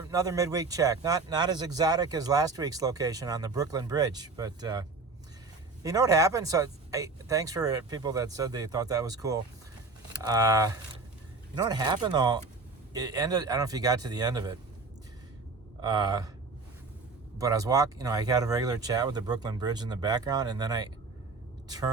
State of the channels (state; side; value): quieter; left; 3.9 dB